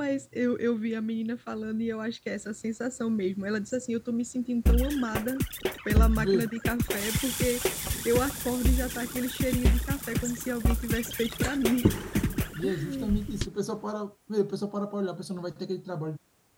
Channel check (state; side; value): identical; both; correlation 1.00